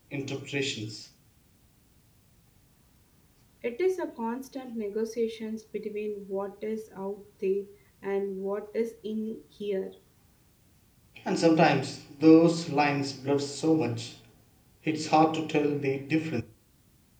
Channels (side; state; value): both; identical; correlation 1.00